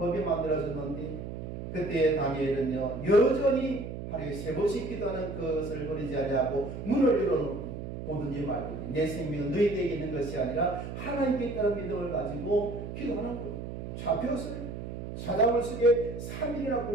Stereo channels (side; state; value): right; noise; hum, 8 dB below the sound